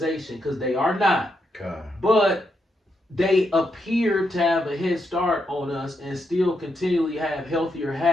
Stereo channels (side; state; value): both; normal; correlation 0.81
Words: because they are not. But they appear to have a head start on us and still continually have healthier